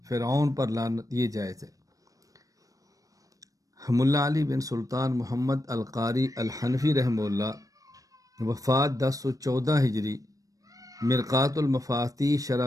فرعون پر لعنت، یہ جائز ہے۔ ملا علی بن سلطان محمد القاری الحنفی رحمہ اللہ، وفات 1014 ہجری، مرقات المفاتیح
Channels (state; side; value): late; left; 0.16 ms